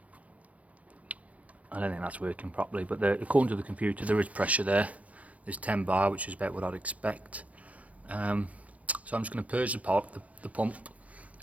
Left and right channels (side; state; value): left; late; 0.066 ms